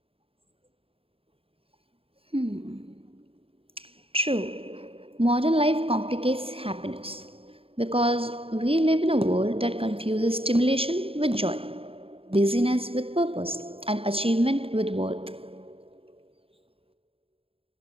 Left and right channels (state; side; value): late; left; 0.27 ms